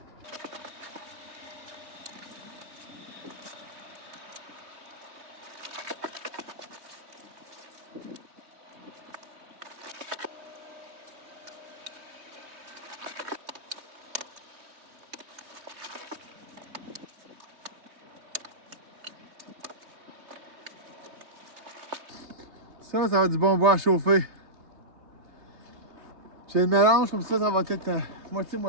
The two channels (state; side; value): late; left; 3.2 ms